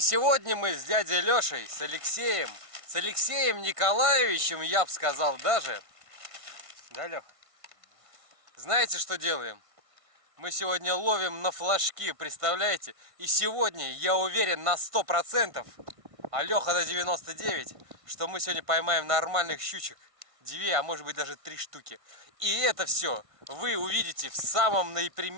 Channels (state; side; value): late; left; 1.5 ms